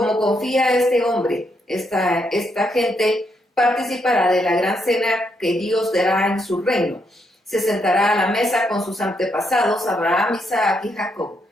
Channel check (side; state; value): both; normal; correlation 0.77